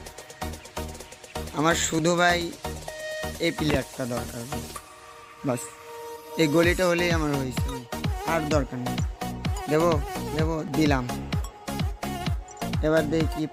আমার শুধু ভাই এই প্লেয়ারটা দরকার, বাস এই গলিটা হলেই আমার হয়েছে, আর দরকার নেই। দেবো দেবো, দিলাম। এবার দেখি কি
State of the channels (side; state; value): both; identical; correlation 1.00